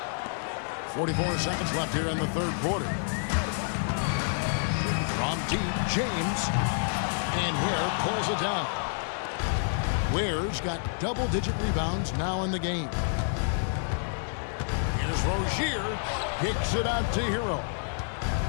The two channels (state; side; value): silent; right; digital silence